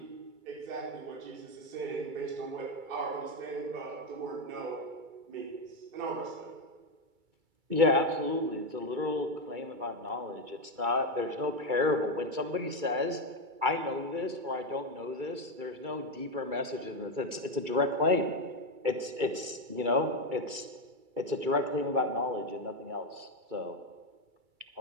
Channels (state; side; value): late; left; 2.3 ms